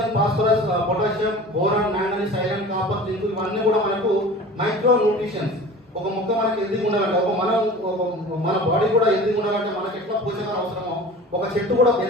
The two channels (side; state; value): both; normal; correlation 0.39